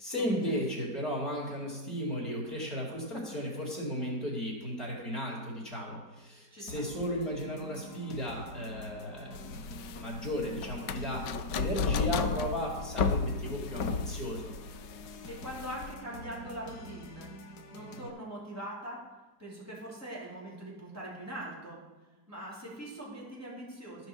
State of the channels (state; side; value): late; right; 5.2 ms